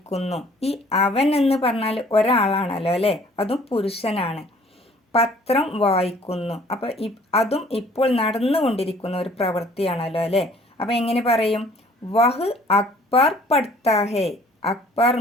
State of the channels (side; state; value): both; normal; correlation 0.55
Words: ഈ അവൻ എന്ന് പറഞ്ഞാൽ ഒരാളാണല്ലോ അല്ലേ, അതും പുരുഷനാണ്. പത്രം വായിക്കുന്നു, അപ്പോൾ അതും ഇപ്പോൾ നടന്നുകൊണ്ടിരിക്കുന്ന ഒരു പ്രവൃത്തിയാണല്ലോ അല്ലേ. അപ്പോൾ എങ്ങനെ പറയും? വഹ് അക്ബർ പഠിത്താഹെ. അക്ബർ